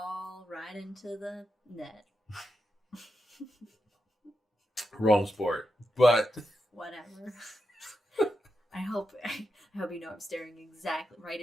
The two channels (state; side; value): normal; both; correlation 0.88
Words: right into the net. Wrong sport, but whatever. I hope you know I'm staring exactly right